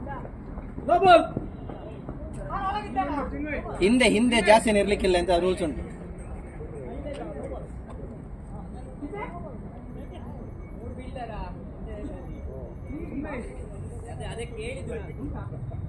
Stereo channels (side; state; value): both; identical; correlation 1.00